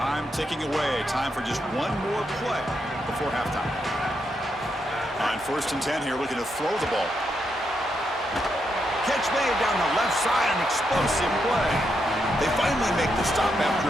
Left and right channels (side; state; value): both; normal; correlation 0.81